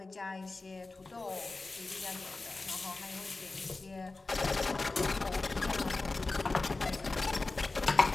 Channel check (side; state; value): right; quieter; 3.5 dB